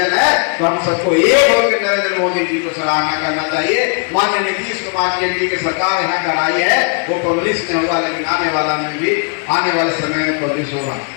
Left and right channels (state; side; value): quieter; right; 39.8 dB